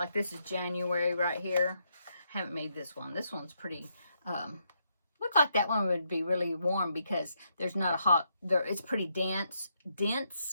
this is January right here. I haven't made this one. This one's pretty, look like that one would be really warm, because there's not a hot, it's pretty dense,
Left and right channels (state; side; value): inverted; both; correlation -0.78